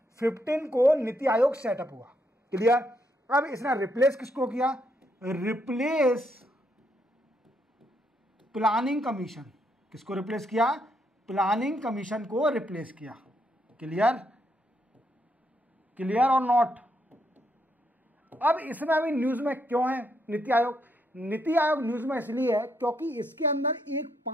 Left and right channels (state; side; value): normal; both; correlation 0.76